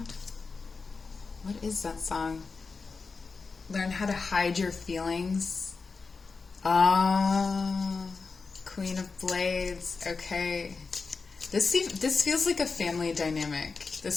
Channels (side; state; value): right; quieter; 4.5 dB